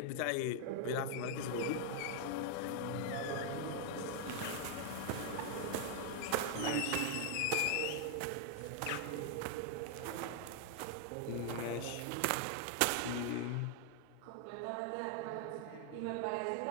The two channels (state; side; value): different; both; correlation 0.00